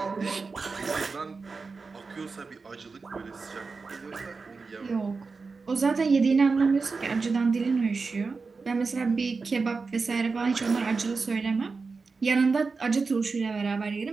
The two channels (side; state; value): left; quieter; 4.4 dB